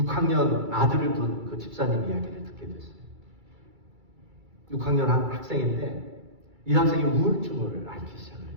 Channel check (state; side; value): late; left; 2.3 ms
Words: 아들을 둔 그 집사님 이야기를 듣게 됐어요. 6학년 한 학생인데 이 학생이 우울증을 앓기 시작을